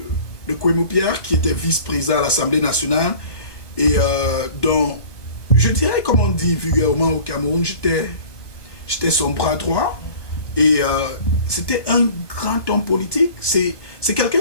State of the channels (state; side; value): late; right; 1.2 ms